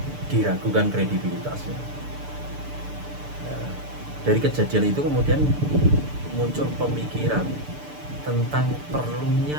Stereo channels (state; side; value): late; left; 6.8 ms